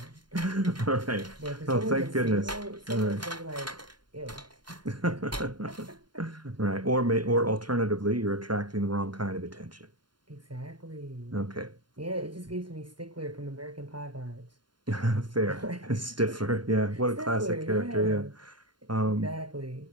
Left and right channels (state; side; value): late; left; 0.71 ms